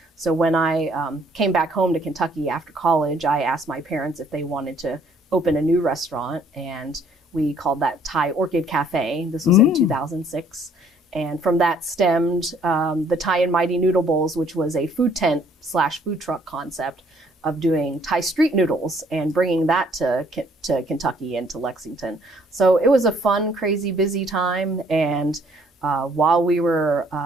so when I came back home to Kentucky after college, I asked my parents if they wanted to open a new restaurant. And we called that Thai Orchid Cafe. This was in 2006. And from that stemmed the Thai and Mighty Noodle Bowls, which was a food tent / food truck concept of doing Thai street noodles and bringing that to Kentucky and to Lexington. So it was a fun, crazy, busy time. And while we were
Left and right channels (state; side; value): normal; both; correlation 0.62